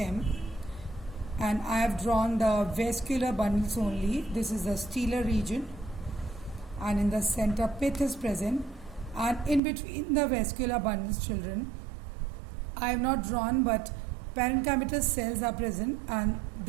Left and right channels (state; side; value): drops out; left; at 9.6 s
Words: and I have drawn the vascular bundles only. This is the stellar region, and in the center pith is present, and in between the vascular bundles, children, I have not drawn, but parenchymatous cells are present, and